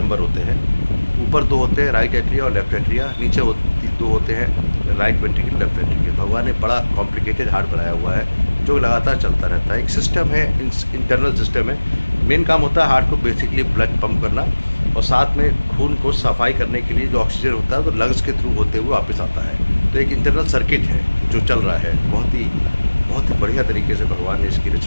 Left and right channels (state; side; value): inverted; both; correlation -1.00